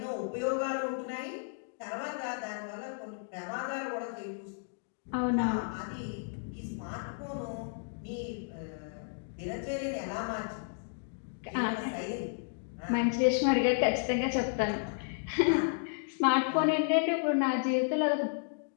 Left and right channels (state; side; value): silent; right; digital silence